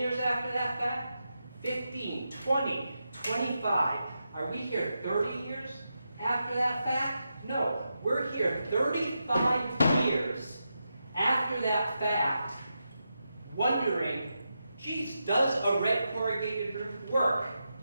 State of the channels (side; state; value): both; inverted; correlation -0.87